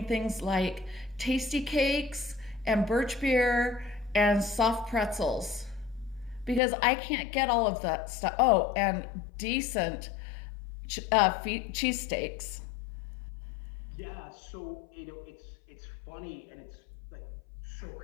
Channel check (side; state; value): right; drops out; at 6.6 s